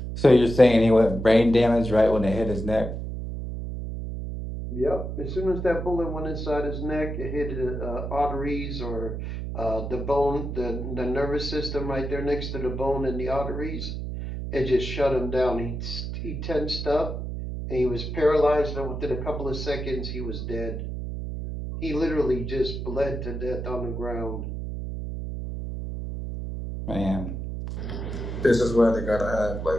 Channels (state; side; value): noise; right; hum, 5 dB below the sound